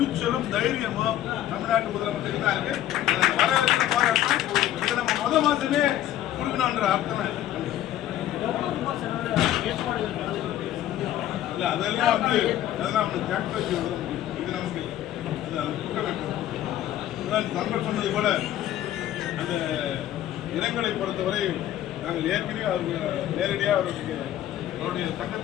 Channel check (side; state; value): right; quieter; 12.5 dB